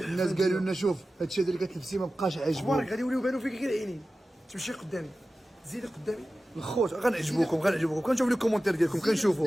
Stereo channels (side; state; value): both; normal; correlation 0.95